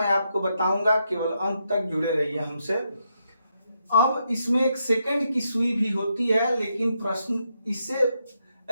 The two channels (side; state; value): both; inverted; correlation -0.81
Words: आपको बताऊंगा। केवल अंत तक जुड़े रहिए हमसे। अब इसमें एक सेकंड की सुई भी होती है, लेकिन प्रश्न इससे